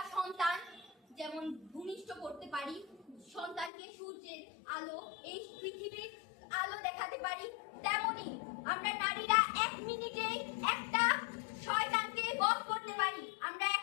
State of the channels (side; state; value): right; drops out; at 3.7 s